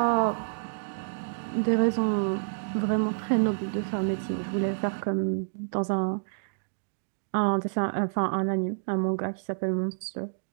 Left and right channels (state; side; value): silent; left; digital silence